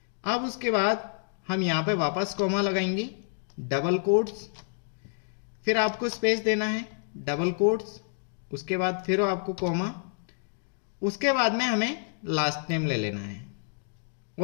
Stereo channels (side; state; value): right; silent; digital silence